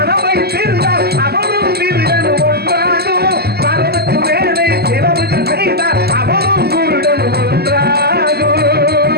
தீர்ந்தால் அவனும் திருடன் ஒன்றாகும். அளவுக்கு மேலே செலவுக்கு செய்தால் அவனும் குருடன் ஒன்றாகும்.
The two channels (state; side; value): late; left; 0.46 ms